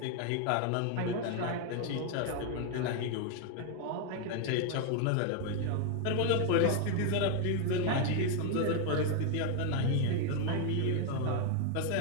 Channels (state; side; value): different; both; correlation 0.01